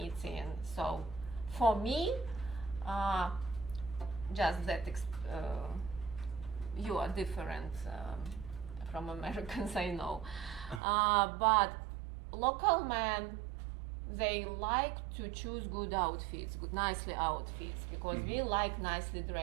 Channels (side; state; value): left; drops out; at 10.8 s